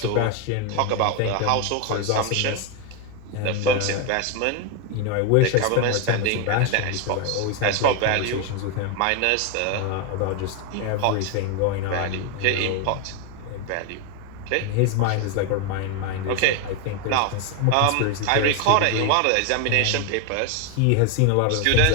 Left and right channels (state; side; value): different; both; correlation 0.01